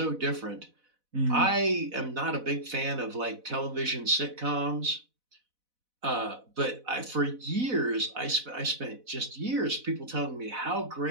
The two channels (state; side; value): late; left; 4.0 ms